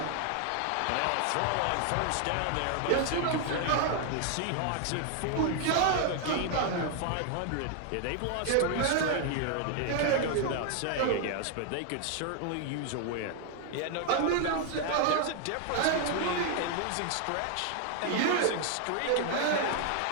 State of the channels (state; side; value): different; both; correlation 0.00